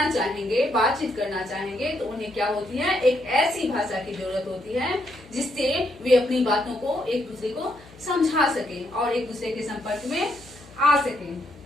चाहेंगे, बातचीत करना चाहेंगे, तो उन्हें क्या होती है? एक ऐसी भाषा की जरूरत होती है जिससे वे अपनी बातों को एक दूसरे को समझा सकें और एक दूसरे के संपर्क में आ सकें।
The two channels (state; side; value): noise; left; hum, 23 dB below the sound